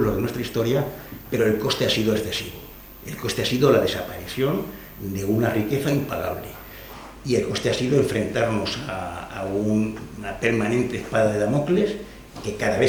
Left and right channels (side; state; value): both; identical; correlation 1.00